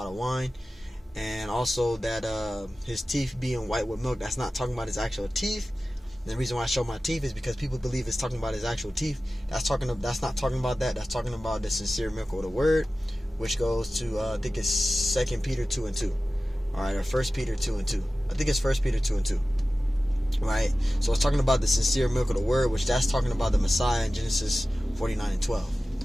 of wine. And also that his teeth being white with milk, that's not talking about his actual teeth. And the reason why I show my teeth is because people believe it's talking about his actual teeth. That's not talking about that. That's talking about the sincere milk of the word, which goes to, I think it's 2 Peter 2 and 2. Alright, or 1 Peter 2 and 2. I think it's 1 Peter 2 and 2. Right? So it's talking about the sincere milk of the word, which that's talking about the Messiah in Genesis 49 and 12.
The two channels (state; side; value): normal; both; correlation 0.96